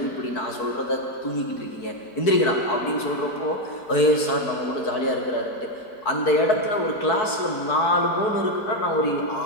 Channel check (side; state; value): right; late; 4.6 ms